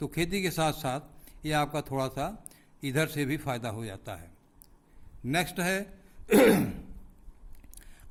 खेती के साथ साथ ये आपका थोड़ा सा इधर से भी फ़ायदा हो जाता है। नेक्स्ट है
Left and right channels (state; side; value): identical; both; correlation 1.00